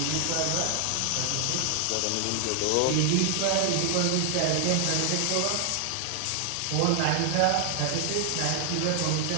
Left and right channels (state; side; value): different; both; correlation 0.00